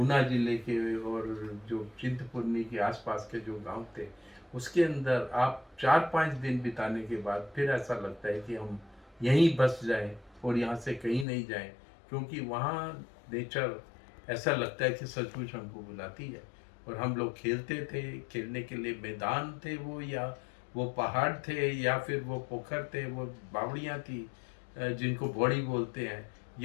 जिले के और जो चिंतपूर्णी के आसपास के जो गांव थे, उसके अंदर आप 4-5 दिन बिताने के बाद फिर ऐसा लगता है कि हम यहीं बस जाएं और यहाँ से कहीं नहीं जाएं, क्योंकि वहाँ नेचर ऐसा लगता है कि सचमुच हमको बुलाती है। और हम लोग खेलते थे, खेलने के लिए मैदान थे वो, या वो पहाड़ थे, या फिर वो पोखर थे, वो बावड़ियाँ थी जिनको बौड़ी बोलते हैं,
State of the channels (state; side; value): drops out; right; at 11.2 s